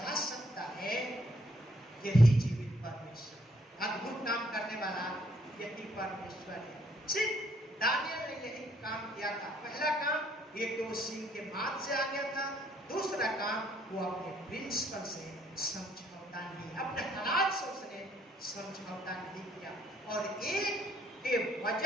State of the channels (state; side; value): normal; both; correlation 0.67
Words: सकता है, यही जीवित परमेश्वर, अद्भुत काम करने वाला यही परमेश्वर है। सिर्फ दानियल ने यही काम किया था। पहला काम, एक तो सिंह के माथ से आ गया था। दूसरा काम, वो अपने प्रिंसिपल से समझौता नहीं, अपने हालात से उसने समझौता नहीं किया। और एक के